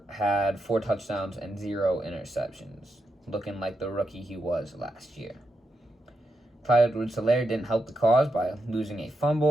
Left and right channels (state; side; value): normal; both; correlation 0.85